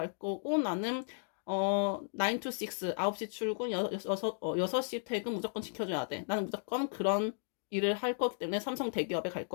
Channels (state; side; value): silent; right; digital silence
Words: 거고, 나는 9 to 6, 9시 출근, 6시 퇴근 무조건 지켜줘야 돼. 나는 무조건 그런 일을 할 거기 때문에 삼성 대기업에 갈